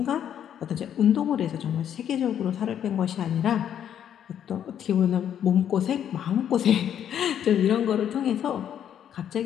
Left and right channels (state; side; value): quieter; right; 9.6 dB